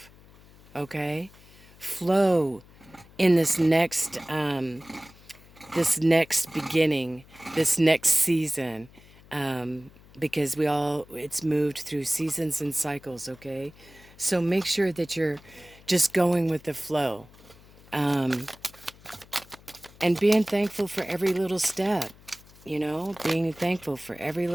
Okay? Flow in this next beginning, this next season, because it's moved through seasons and cycles, okay? So make sure that you're just going with the flow, and being thankful for every little step, being thankful for every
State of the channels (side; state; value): left; noise; hum, 24 dB below the sound